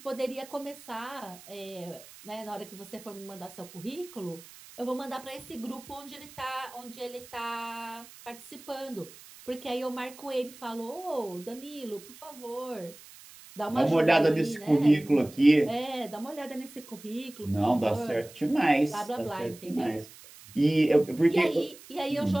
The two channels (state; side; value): noise; right; hiss, 19 dB below the sound